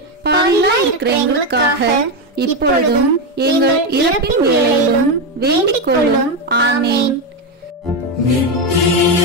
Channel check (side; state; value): both; normal; correlation 0.09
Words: பாவிகளாய் இருக்கிற எங்களுக்காக இப்பொழுதும் எங்கள் இறப்பின் வேளையிலும் வேண்டிக் கொள்ளும். ஆமேன். நித்திய